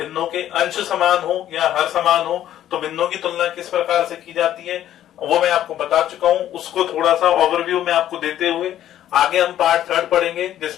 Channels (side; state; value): right; quieter; 11.9 dB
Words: के अंश समान हो या हर समान हो, तो भिन्नों की तुलना किस प्रकार से की जाती है वो मैं आपको बता चुका हूं। उसको थोड़ा सा ओवरव्यू में आपको देते हुए आगे हम पार्ट थर्ड पढ़ेंगे,